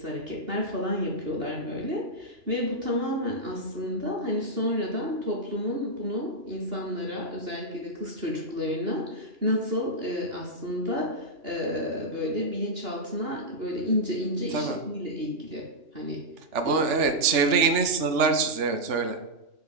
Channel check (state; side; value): late; left; 3.4 ms